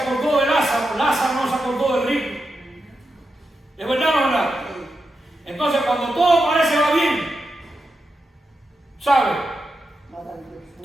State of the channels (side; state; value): both; normal; correlation 0.87